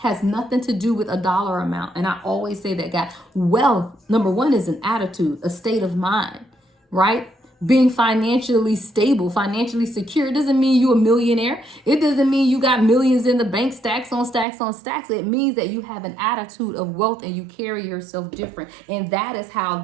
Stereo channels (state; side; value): drops out; left; at 14.5 s